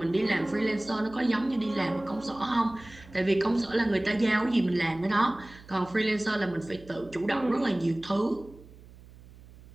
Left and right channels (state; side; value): noise; right; hum, 21 dB below the sound